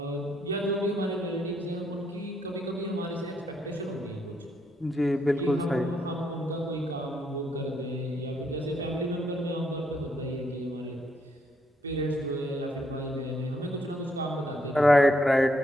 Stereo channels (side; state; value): both; normal; correlation 0.74